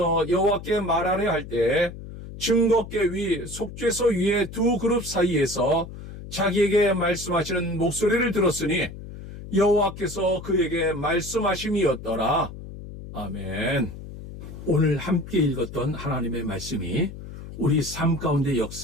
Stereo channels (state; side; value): noise; left; hum, 12 dB below the sound